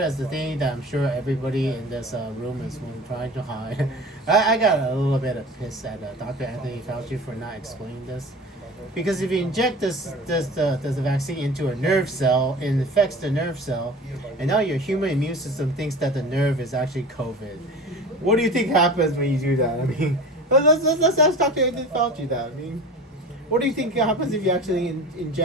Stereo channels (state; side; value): normal; both; correlation 0.37